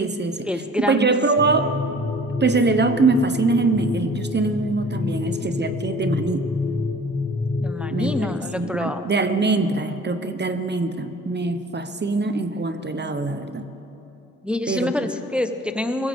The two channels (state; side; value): normal; both; correlation 0.47